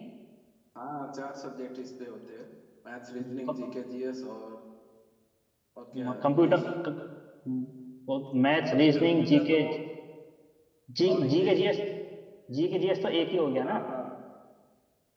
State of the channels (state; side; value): identical; both; correlation 1.00